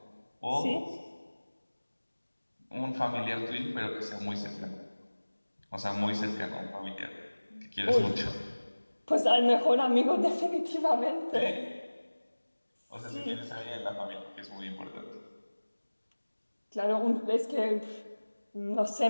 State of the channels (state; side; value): inverted; both; correlation -1.00